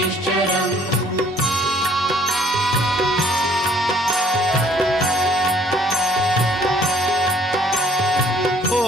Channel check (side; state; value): both; normal; correlation 0.59